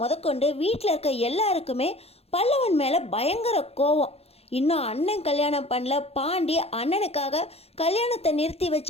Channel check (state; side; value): late; right; 0.29 ms